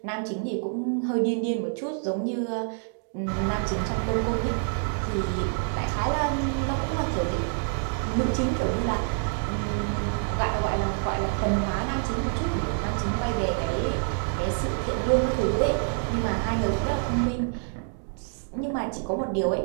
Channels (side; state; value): left; silent; 60 dB below the other